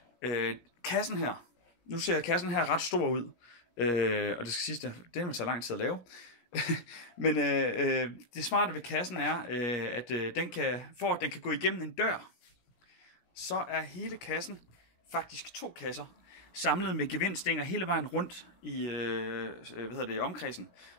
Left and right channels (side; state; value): right; late; 17 ms